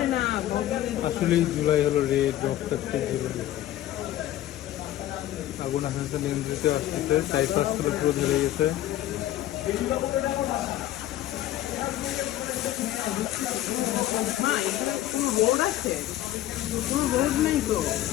আসলেই জুলাই হলো রেড রক্তাক্ত জুলাই আগুন আস্তে আস্তে নিয়ন্ত্রিত আসতেছে চারিপাশগুলো পুরো ধরে গেছে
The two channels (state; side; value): quieter; right; 13.5 dB